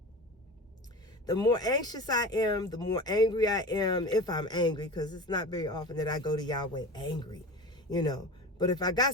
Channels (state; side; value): normal; both; correlation 0.32